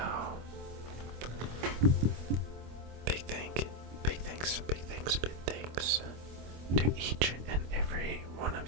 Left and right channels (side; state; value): left; late; 25 ms